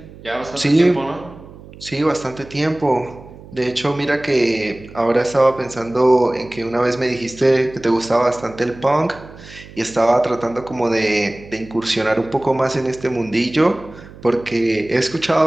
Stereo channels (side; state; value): right; noise; hum, 19 dB below the sound